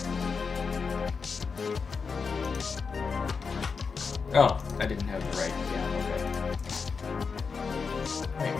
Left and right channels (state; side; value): quieter; right; 5.2 dB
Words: Oh, I didn't have the right. Yeah, okay. Wait,